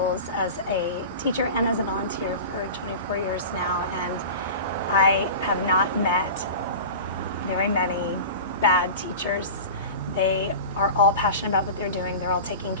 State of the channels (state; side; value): inverted; both; correlation -0.33